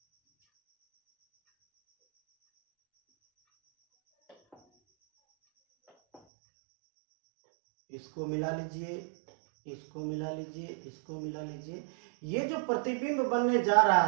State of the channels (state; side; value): drops out; left; at 6.2 s